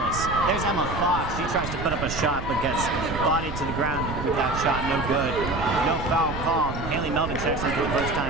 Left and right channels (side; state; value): right; noise; rumble, 7 dB below the sound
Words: There's Emma Fox. She tries to put up a shot but gets bodied to the ground with that shot. No good. No foul call. Haley Melvin checks in for the first